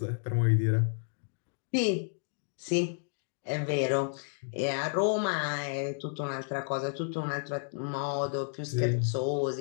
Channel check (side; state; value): right; silent; digital silence